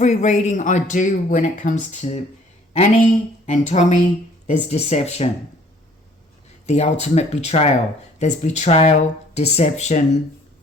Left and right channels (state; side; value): normal; both; correlation 0.57